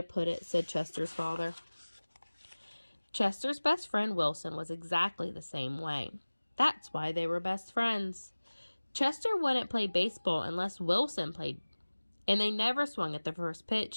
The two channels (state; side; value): inverted; both; correlation -1.00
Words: put it, said Chester's father. Chester's best friend Wilson was exactly the same way. That's why they were best friends. Chester wouldn't play baseball unless Wilson played, and they never swung at the first